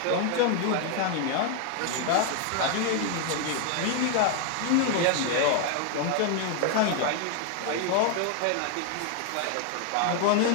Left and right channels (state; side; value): different; both; correlation 0.00